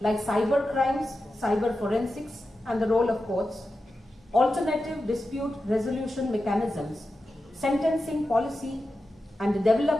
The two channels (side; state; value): both; normal; correlation 0.91